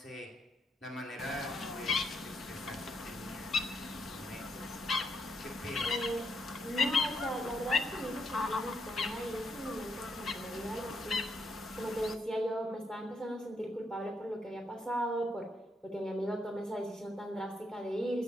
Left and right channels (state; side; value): normal; both; correlation 0.77